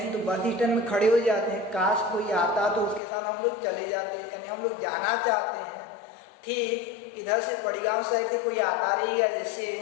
तो बस स्टैंड में खड़े हो जाते हैं, काश कोई आता तो उसके साथ हम लोग चले जाते हैं, यानी हम लोग जाना चाहते हैं। ठीक इधर से बड़ी गांव साइड से कोई आता रहेगा जैसे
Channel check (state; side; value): drops out; right; at 3.0 s